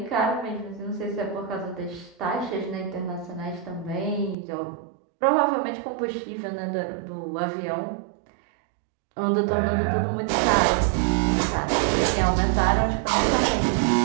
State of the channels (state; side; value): drops out; left; at 4.4 s